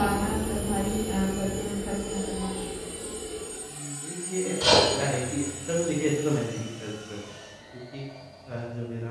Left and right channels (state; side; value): identical; both; correlation 1.00